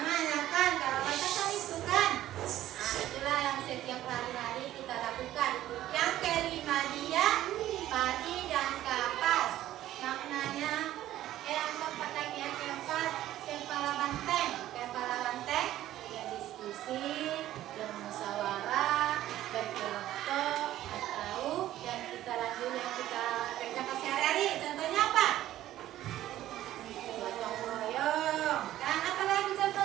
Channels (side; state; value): left; quieter; 13.6 dB